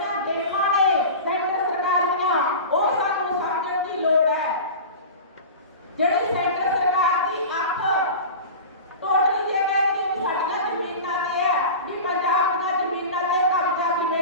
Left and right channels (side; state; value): both; inverted; correlation -0.32